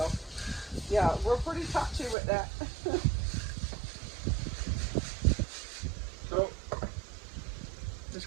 yeah, we're pretty touchy with that. So, this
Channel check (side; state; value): left; drops out; at 2.1 s